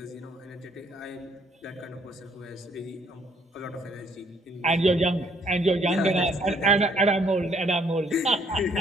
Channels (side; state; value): both; normal; correlation 0.65